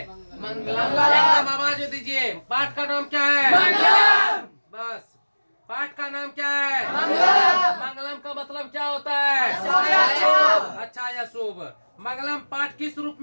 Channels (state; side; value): inverted; both; correlation -1.00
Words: मंगलम। एकदम आवाज दीजिए, पाठ का नाम क्या है, मंगलम। बस, पाठ का नाम क्या है, मंगलम। मंगलम का मतलब क्या होता है, अच्छा या शुभ। मंगलम पाठ किस रूप